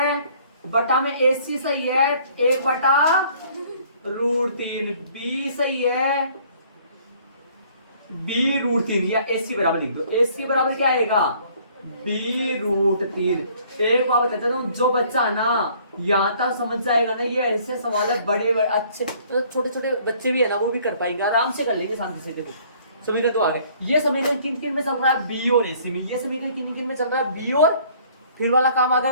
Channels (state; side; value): inverted; both; correlation -0.58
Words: बटा में AC सही है, 1/√3, B सही है B√3, या AC बराबर लिख दो। AC बराबर क्या आएगा B√3। एक बात बताता हूँ, जो बच्चा ना यहाँ तक समझ जाएगा ना, ये ऐसे सवाल है बड़े अच्छे, तो छोटे छोटे बच्चे भी है ना वो भी कर पाएंगे, आराम से कर लेंगे शांति से। देखो समीकरण तो आ गए। ये समीकरण किन में चल रहा है, B और AC में। ये समीकरण किन में चल रहा है, B, और फिर वाला काम आ